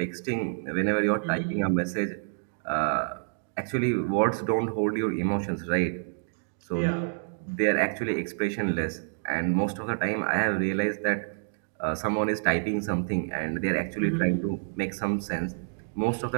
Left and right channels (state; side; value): silent; left; digital silence